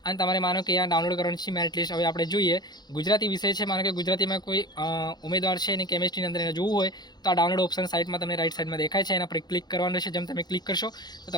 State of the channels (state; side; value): late; right; 0.20 ms